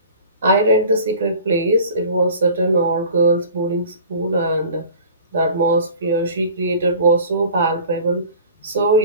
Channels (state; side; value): inverted; both; correlation -0.44